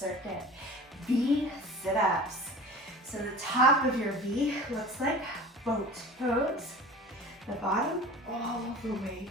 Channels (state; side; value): normal; both; correlation 0.39